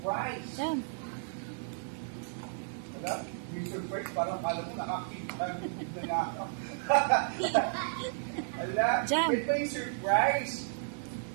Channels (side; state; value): left; silent; digital silence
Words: Jam. Wala? Yung surprise, parang kala mo nakakita na nga ako. Wala? Jam. Wait pa yung surprise.